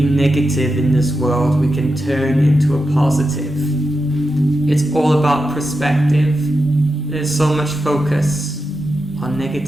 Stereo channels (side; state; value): both; normal; correlation 0.89